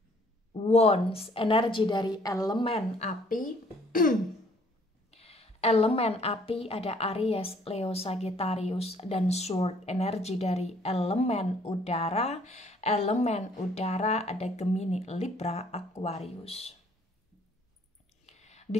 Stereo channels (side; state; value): both; normal; correlation 0.61